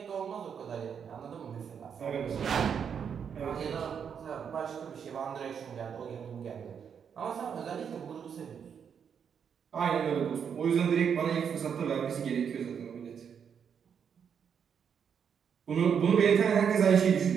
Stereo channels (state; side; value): quieter; left; 7.4 dB